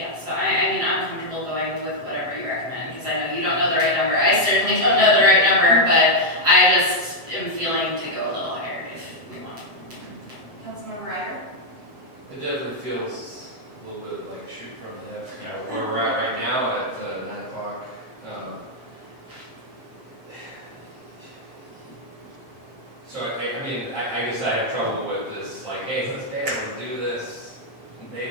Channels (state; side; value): late; left; 7.6 ms